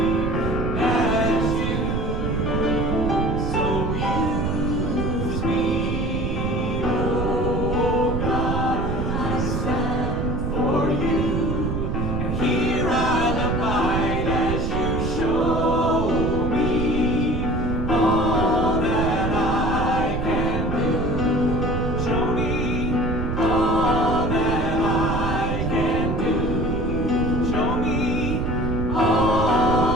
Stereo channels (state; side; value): noise; right; rumble, 1 dB below the sound